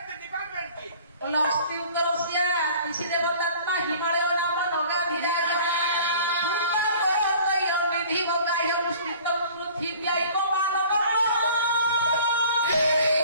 ଅସ୍ତି ଉତ୍ତରସିଆ ଋଷି ଦେବତାତ୍ମା ହିମାଳୟ ନାମ ନଗାଧିରା ନିଧି ବଗାହ୍ୟ ମୁଷ୍ଟିତ ପୃଥିବୀ ମାନବ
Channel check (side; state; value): both; inverted; correlation -0.48